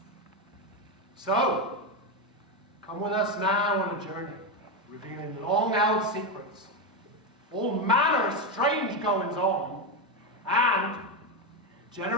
So, come with us now on a journey, revealing long-held secrets, all manner of strange goings-on, and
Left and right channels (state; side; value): normal; both; correlation 0.09